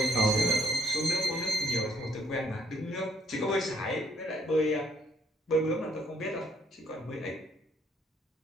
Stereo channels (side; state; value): both; normal; correlation 0.69